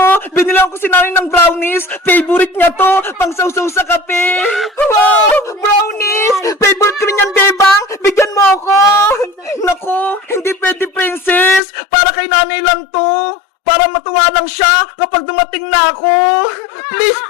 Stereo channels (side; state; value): right; drops out; at 11.6 s